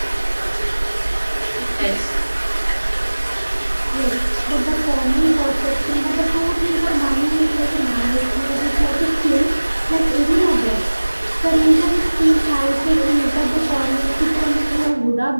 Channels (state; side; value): inverted; both; correlation -1.00